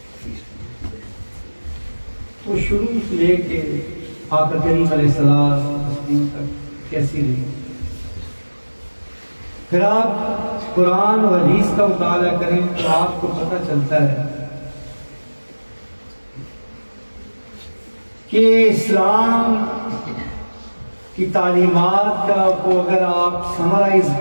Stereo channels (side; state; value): both; inverted; correlation -1.00